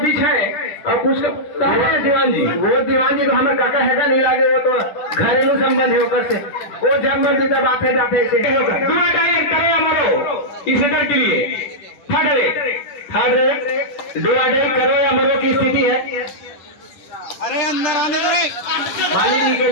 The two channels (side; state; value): right; late; 10 ms